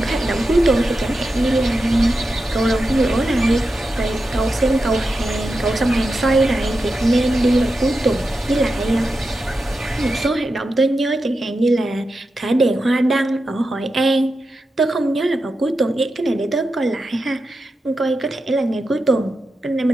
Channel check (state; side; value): normal; both; correlation 0.89